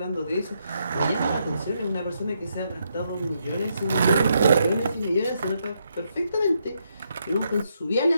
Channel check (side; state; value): both; inverted; correlation -0.78